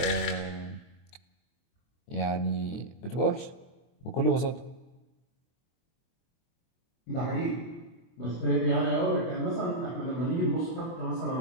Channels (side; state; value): right; late; 24 ms